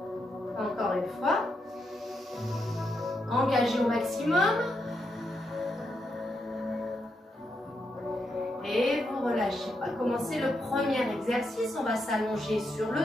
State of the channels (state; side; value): normal; both; correlation 0.82